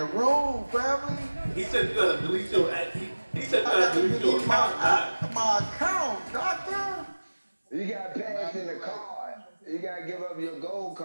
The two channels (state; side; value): inverted; both; correlation -1.00